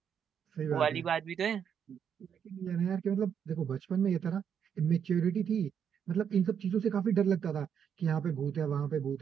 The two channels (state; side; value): quieter; left; 7.9 dB